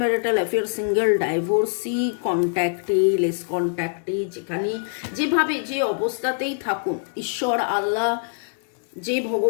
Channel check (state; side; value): silent; right; digital silence